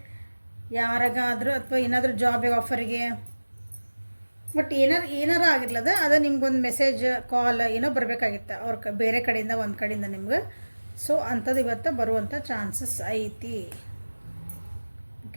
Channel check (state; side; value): inverted; both; correlation -1.00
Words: ಯಾರಿಗಾದ್ರೂ ಅಥವಾ ಏನಾದರೂ ಜಾಬ್ ಆಫರಿಗೆ, ಬಟ್ ಏನಾರು ಆಗಿರ್ಲದ ಅದು ನಿಮ್ಗೊಂದು ಮೆಸೇಜ್ ಕಾಲ್ ಏನೋ ಬರಬೇಕಾಗಿತ್ತು ಅವ್ರ ಬೇರೆ ಕಡೆಯಿಂದ, ಒಂದು ಕಡೆಯಿಂದ ನಿಮ್ಗೆ. ಸೊ ಅಂಥದ್ದು ಇವತ್ತು ಬರುವಂಥ ಚಾನ್ಸಸ್ ಐತಿ.